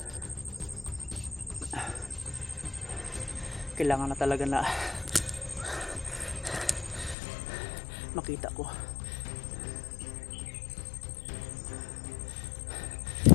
Kailangan na talaga na makita ko.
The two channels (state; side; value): drops out; right; at 7.2 s